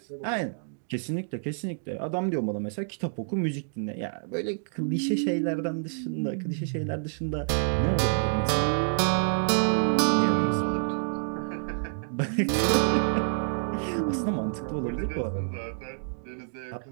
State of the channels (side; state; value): left; silent; digital silence